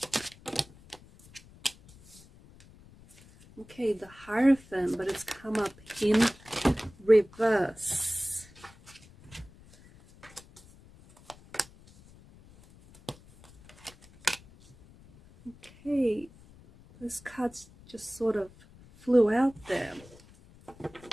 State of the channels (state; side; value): noise; left; rumble, 24 dB below the sound